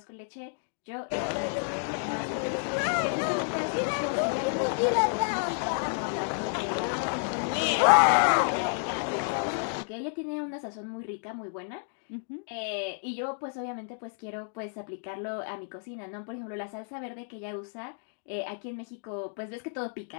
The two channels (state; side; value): silent; right; digital silence